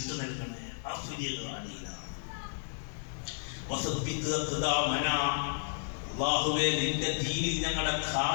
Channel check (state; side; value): silent; right; digital silence